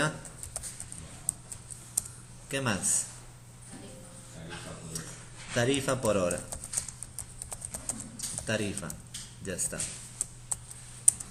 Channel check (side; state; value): both; identical; correlation 1.00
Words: ¿Qué más? Tarifa por hora. Tarifa por hora. Tarifa. Ya está.